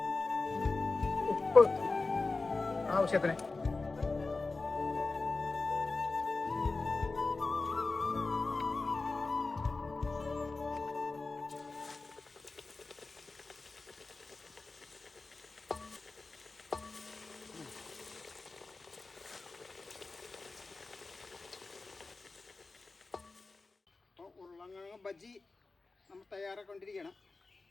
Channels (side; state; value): right; quieter; 3.7 dB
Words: ഉപ്പ് ആവശ്യത്തിന്, ഉരുളക്കിഴങ്ങ് ബജ്ജി നമ്മൾ തയ്യാറാക്കൊണ്ടിരിക്കണം.